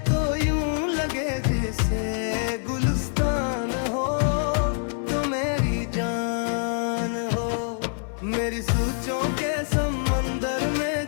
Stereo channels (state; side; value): silent; right; 58 dB below the other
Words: तो यूं लगे जैसे गुलिस्तान हो, तो मेरी जान हो। मेरी सोचों के समंदर में